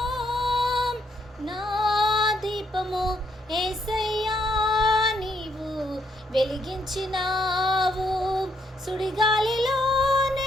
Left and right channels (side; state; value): both; normal; correlation 0.74